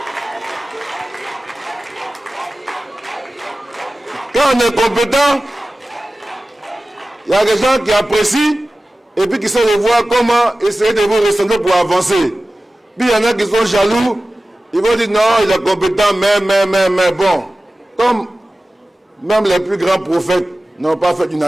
quand on est compétent, il y a des gens qui apprécient et puis qui savent voir comment essayer de vous ressembler pour avancer. Puis il y en a qui sont jaloux, ils vont dire non, il est compétent, mais bon, comme même les plus grands prophètes n'ont pas fait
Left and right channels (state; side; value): normal; both; correlation 0.96